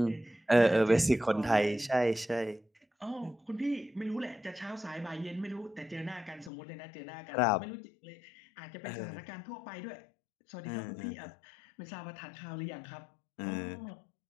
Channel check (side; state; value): right; drops out; at 6.5 s